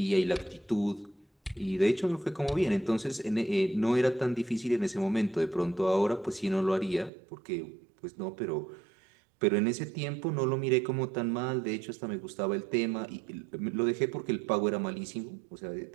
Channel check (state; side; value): drops out; left; at 7.1 s